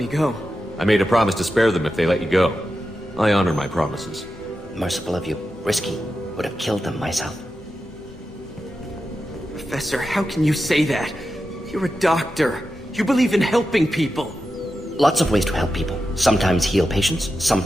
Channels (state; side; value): normal; both; correlation 0.90